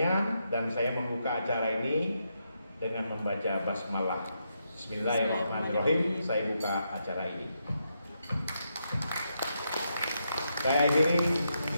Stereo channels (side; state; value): both; inverted; correlation -0.81